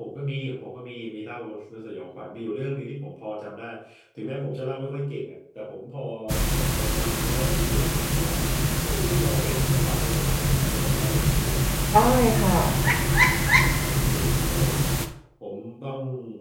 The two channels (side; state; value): both; identical; correlation 1.00